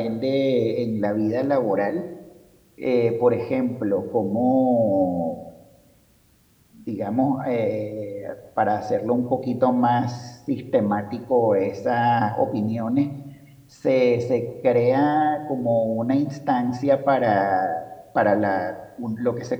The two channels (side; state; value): both; identical; correlation 1.00